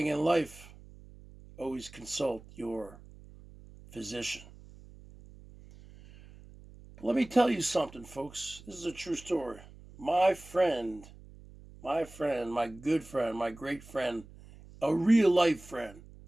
in life, always consult your physician. But let me tell you something, folks. This is a true story. My friend, my good friend, my great friend, a real life friend,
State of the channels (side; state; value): right; noise; hum, 20 dB below the sound